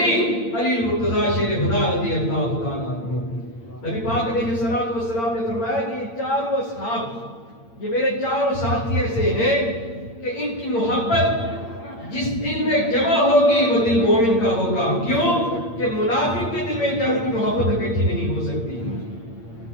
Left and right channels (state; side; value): late; right; 8.7 ms